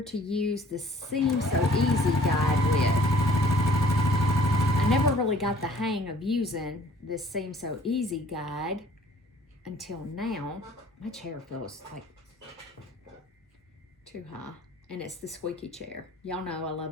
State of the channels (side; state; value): both; normal; correlation 0.54